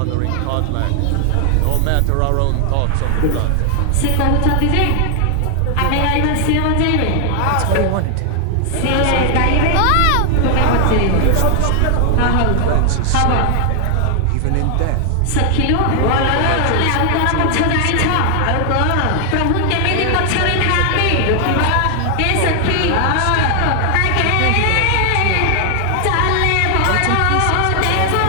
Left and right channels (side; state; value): both; different; correlation 0.00